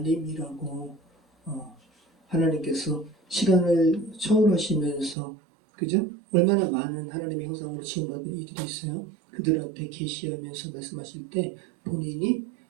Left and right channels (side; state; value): left; drops out; at 5.2 s